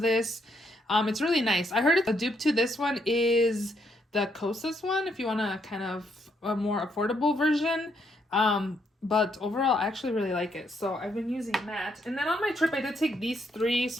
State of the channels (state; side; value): normal; both; correlation 0.74